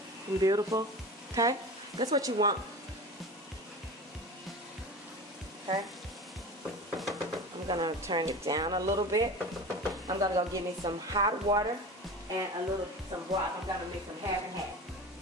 And beautiful, okay? That's what you want. Okay, I'm gonna turn it down a little bit. I'm gonna go get me some hot water and some broth. I'm gonna mix them half and half.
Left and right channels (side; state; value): both; normal; correlation 0.32